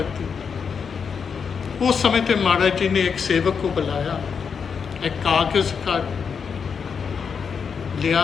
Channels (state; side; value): quieter; right; 6.3 dB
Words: उस समय पे महाराज जी ने एक सेवक को बुलाया, एक कागज़ का लिया